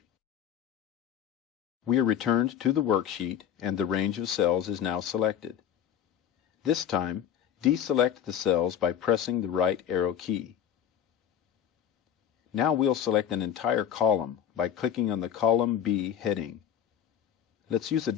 We are returned to the worksheet and the range of cells is now selected. This time, deselect the cells by pressing the right arrow key. Now we'll select an entire column by clicking on the Column B heading. Let's use a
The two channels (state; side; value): quieter; right; 9.5 dB